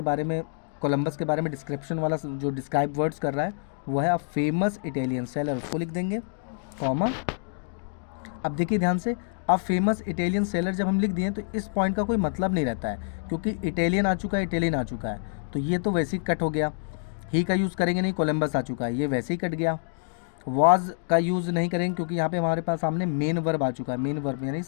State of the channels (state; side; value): silent; right; digital silence